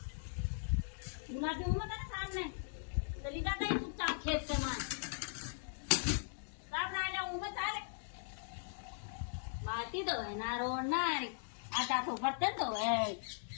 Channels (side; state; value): right; silent; digital silence